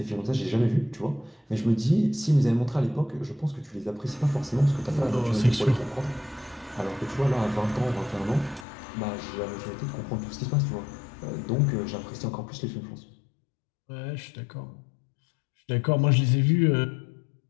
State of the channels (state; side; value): drops out; right; at 8.7 s